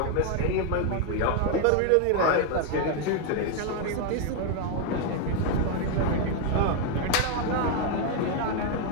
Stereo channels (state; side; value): different; both; correlation 0.01